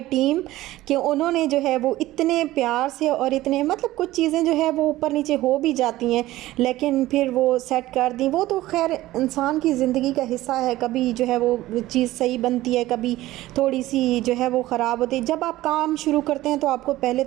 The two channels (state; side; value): quieter; left; 16.4 dB